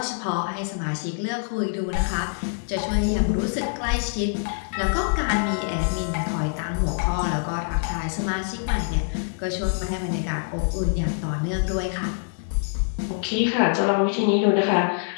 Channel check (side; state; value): right; silent; 62 dB below the other